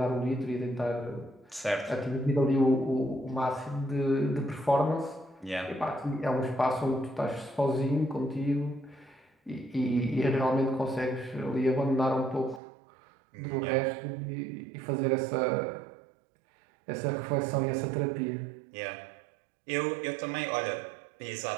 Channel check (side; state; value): left; drops out; at 12.6 s